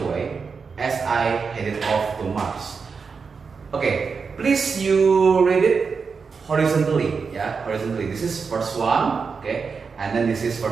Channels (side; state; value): left; quieter; 5.3 dB